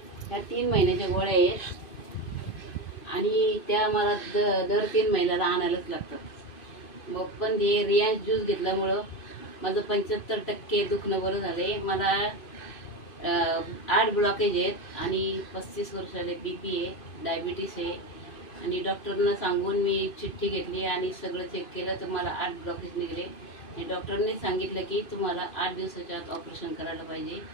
ह्या 3 महिन्याच्या गोळ्या आहेत आणि त्या मला दर 3 महिन्याला आणायलाच लागतात. मग पण हे रिलायन्स ज्यूस घेतल्यामुळं माझं 75% दुखणं बरं झाले. मला 8 ब्लॉकेज आहेत आणि 35 वर्षाले BP आहे, डायबिटीस आहे. आणि डॉक्टरना सांगून मी चिठ्ठी घेतली आणि सगळं चेक केलं तर मला 8 ब्लॉकेज निघले. आणि डॉक्टरने सांगितलं की तुम्हाला 8 दिवसाच्या आत ऑपरेशन करायला पाहिजे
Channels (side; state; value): right; late; 2.5 ms